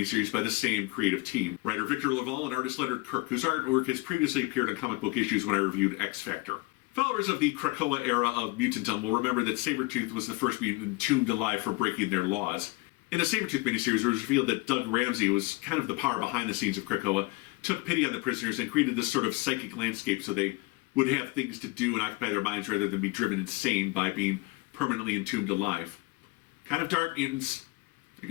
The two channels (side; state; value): right; quieter; 23.3 dB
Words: by the same creative team. Writer Victor Laval and artist Leonard Kirk, whose artwork has previously appeared on comic book issues when I reviewed X Factor. Followers of the Krakoa era of Mutantum will remember that Sabertooth was the first mutant entombed alive for breaking their laws. In the Sabertooth miniseries, it was revealed that Doug Ramsey was kind of the power behind the scenes of Krakoa, took pity on the prisoners, and created this sort of psychic landscape so they would have things to do and occupy their minds rather than be driven insane by being permanently entombed alive. Kind of dark, mutants. I